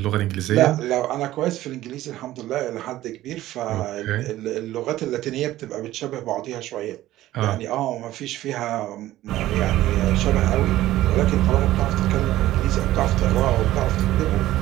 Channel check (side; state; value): left; quieter; 15.0 dB